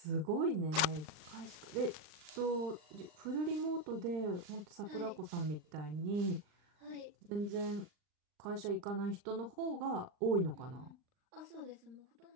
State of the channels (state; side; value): late; left; 38 ms